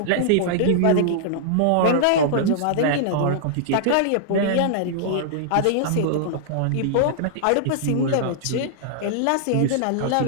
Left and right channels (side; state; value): both; different; correlation -0.01